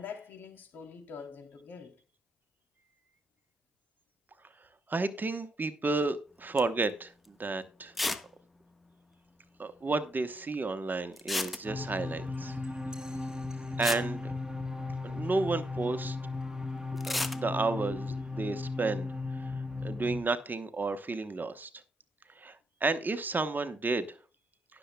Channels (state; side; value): normal; both; correlation 0.78